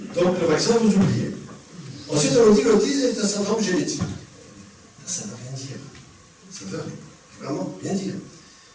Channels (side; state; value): both; identical; correlation 1.00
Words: Donc, le vaccin, vous oubliez. Ensuite, on nous dit que l'autisme est un syndrome génétique. Ça ne veut rien dire. Ça ne veut vraiment rien dire.